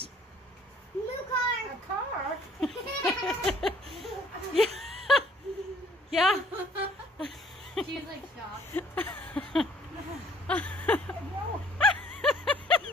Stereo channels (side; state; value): both; normal; correlation 0.58